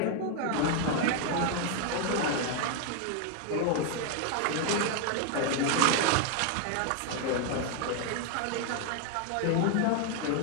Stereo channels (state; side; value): different; both; correlation 0.00